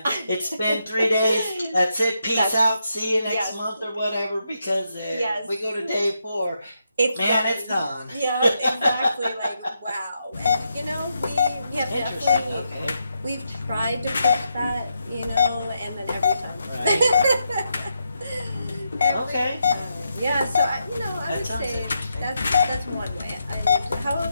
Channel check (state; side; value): inverted; both; correlation -0.82